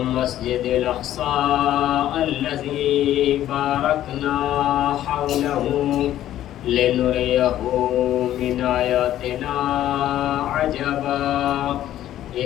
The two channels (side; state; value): right; quieter; 12.6 dB